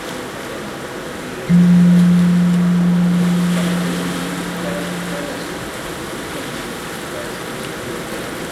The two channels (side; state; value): both; identical; correlation 1.00